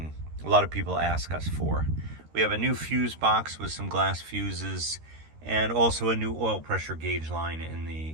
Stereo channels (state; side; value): late; left; 13 ms